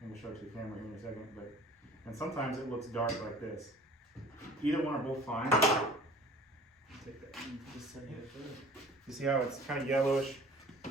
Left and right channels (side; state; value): both; normal; correlation 0.47